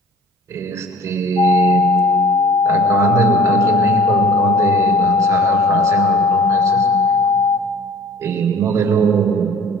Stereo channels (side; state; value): both; normal; correlation 0.49